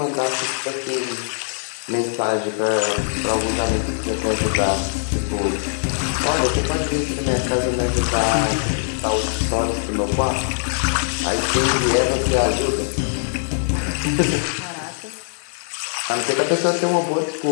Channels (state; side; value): silent; right; digital silence